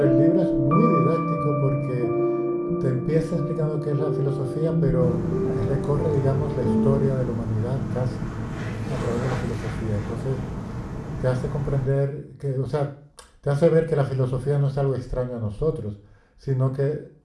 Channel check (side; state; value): both; identical; correlation 1.00